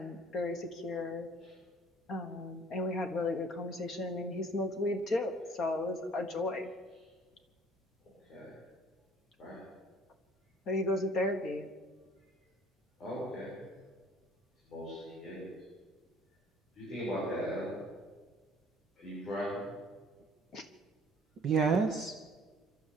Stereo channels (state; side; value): normal; both; correlation 0.54